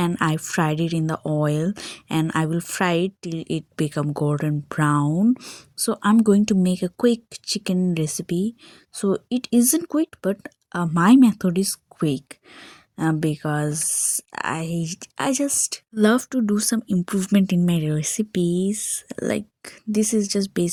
I fried it in the oil, and I will fry it till it become golden brown. So I'm going to make a quick chicken recipe. So it isn't quick, but my method is quick. Because I just love to do some improvement in my recipes. Like this is just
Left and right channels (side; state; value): both; identical; correlation 1.00